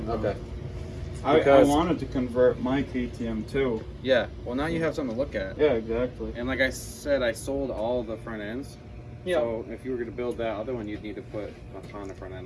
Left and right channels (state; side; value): identical; both; correlation 1.00